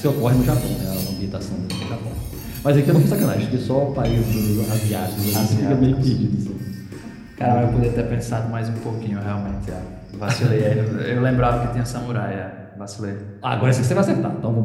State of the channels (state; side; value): identical; both; correlation 1.00